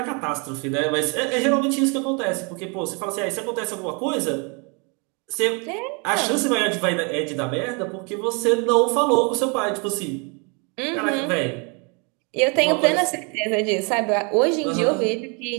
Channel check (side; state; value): left; quieter; 33.6 dB